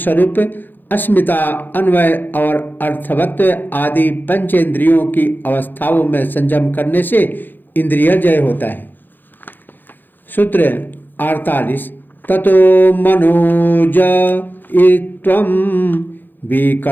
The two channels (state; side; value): late; right; 0.090 ms